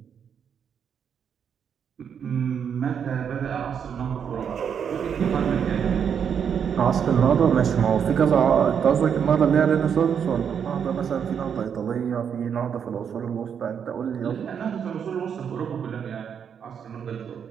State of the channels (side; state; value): left; quieter; 7.6 dB